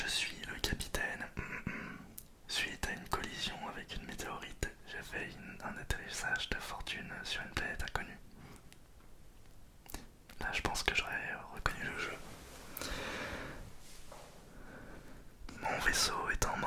suis le capitaine. Suite à une collision avec une météorite, j'ai fait un atterrissage de fortune sur une planète inconnue. Là, je pense que j'aurais reconnu le jeu. Mon vaisseau est en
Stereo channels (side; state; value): both; identical; correlation 1.00